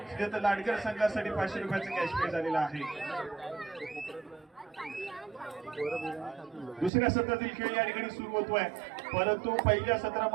लाडगर संघासाठी 500 रुपयाचं कॅश प्राइज आलेलं आहे. दुसऱ्या सत्रातील खेळ या ठिकाणी सुरू होतोय, परंतु पहिल्या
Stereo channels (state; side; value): drops out; left; at 6.9 s